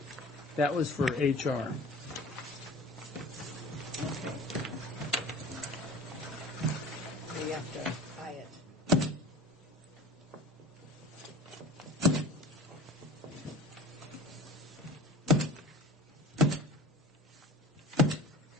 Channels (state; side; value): normal; both; correlation 0.40